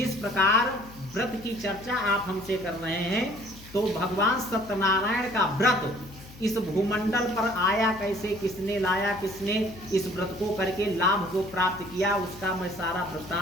प्रकार व्रत की चर्चा आप हमसे कर रहे हैं, तो भगवान सत्यनारायण का व्रत इस भूमंडल पर आया कैसे, किसने लाया, किसने इस व्रत को करके लाभ जो प्राप्त किया, उसका मैं सारा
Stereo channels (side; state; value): left; noise; hum, 19 dB below the sound